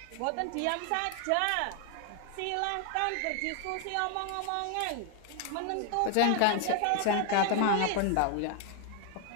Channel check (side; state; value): both; different; correlation 0.00